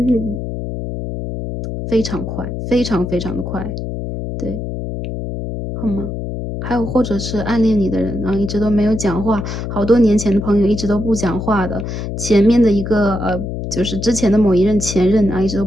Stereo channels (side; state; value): left; noise; hum, 5 dB below the sound